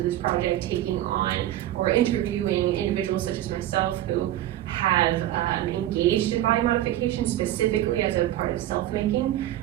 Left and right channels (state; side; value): quieter; left; 13.6 dB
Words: this project taking on or interviewing individuals such as myself who have engaged in body modification specifically as a part of self-making,